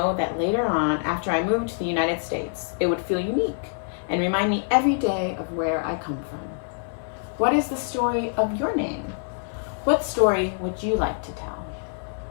that later on, after I moved to the United States, it would feel unique and remind me every day of where I come from. What is the story of your name? What story would you like to tell?"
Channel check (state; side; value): silent; right; digital silence